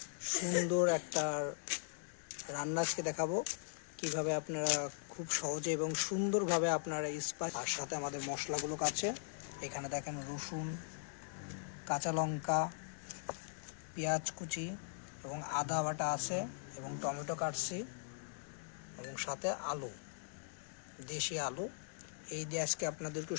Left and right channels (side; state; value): right; silent; digital silence